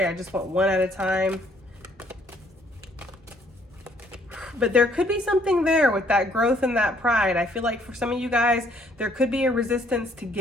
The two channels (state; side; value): normal; both; correlation 0.65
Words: I just want one at a time. But there could be something there with that growth and that pride. I feel like for some of you guys, there could be a resistance to